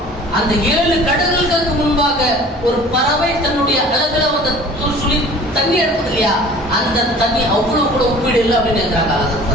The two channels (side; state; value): both; normal; correlation 0.46